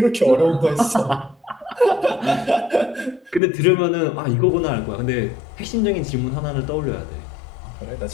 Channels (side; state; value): right; drops out; at 3.4 s